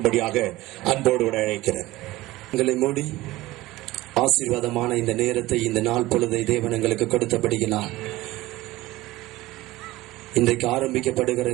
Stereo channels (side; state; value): left; quieter; 18.2 dB